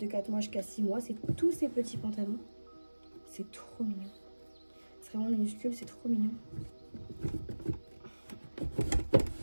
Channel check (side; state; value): both; inverted; correlation -1.00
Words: 4 mois jusqu'à 6 mois. C'est tous ces petits pantalons. C'est trop mignon. C'est vraiment minuscule, c'est trop mignon.